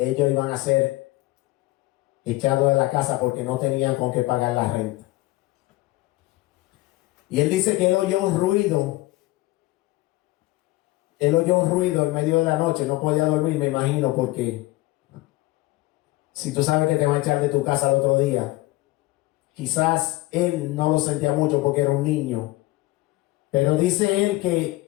iban a ser echados de la casa porque no tenían con qué pagar la renta. Y él dice que él oyó un ruido. Él oyó un ruido en medio de la noche. No podía dormir, me imagino, porque si tú sabes que te van a echar de tu casa al otro día, quizás él no lo sentía mucho porque era un niño. Pero dice él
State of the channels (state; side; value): quieter; right; 19.7 dB